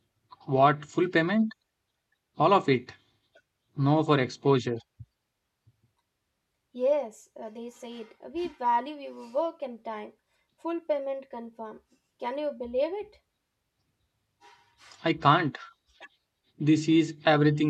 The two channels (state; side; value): identical; both; correlation 1.00